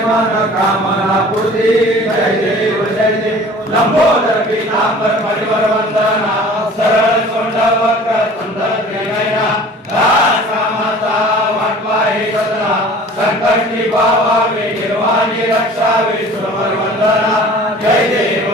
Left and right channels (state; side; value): normal; both; correlation 0.46